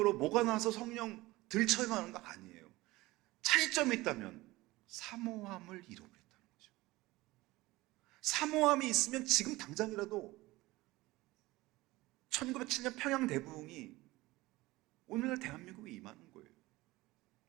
뭐가 나서 성령 들쳐가는 거 아니에요. 차이점이 있다면 사모함을 잃어버렸다는 거죠. 사모함이 있으면 지금 당장이라도 1907년 평양 대부흥이 오늘날 대한민국에 임하는 거예요.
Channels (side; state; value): left; quieter; 19.7 dB